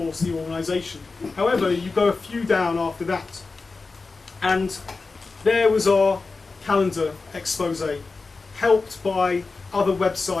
the organisation. However, you go a few down after that, and there was our calendar expose, helped by other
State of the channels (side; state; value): right; quieter; 4.0 dB